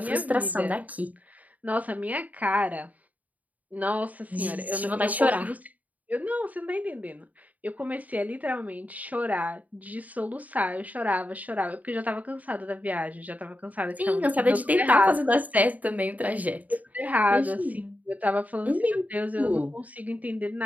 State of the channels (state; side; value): late; left; 0.074 ms